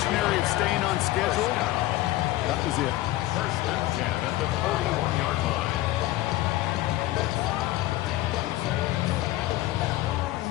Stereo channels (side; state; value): right; quieter; 16.4 dB